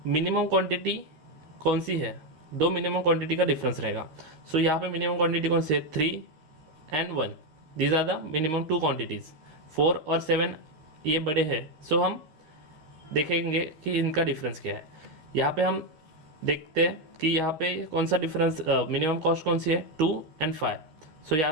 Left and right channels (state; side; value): late; left; 13 ms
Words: मिनिमम क्वांटिटी कौन सी है, दो मिनिमम क्वांटिटी का डिफरेंस रहेगा। सो यहाँ पे मिनिमम क्वांटिटी कौन सी है, 3 and 1, these are the minimum 2 quantities. 4 और 7 ये बड़े हैं, सो हम देखेंगे कि इनका डिफरेंस क्या है। यहाँ पे हम देखते हैं कि यहाँ पे कौन सा डिफरेंस, मिनिमम कॉस्ट कौन सी है, 2 and 5। सो